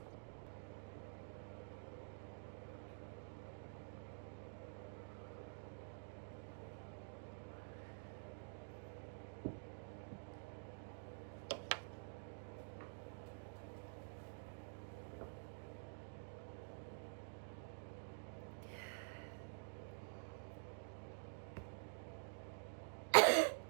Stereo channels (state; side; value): silent; left; digital silence